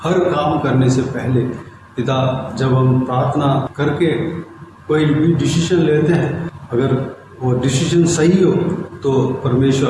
हर काम करने से पहले पिता जब हम प्रार्थना करके कोई भी डिसीजन लेते हैं, अगर वो डिसीजन सही हो तो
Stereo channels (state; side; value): identical; both; correlation 1.00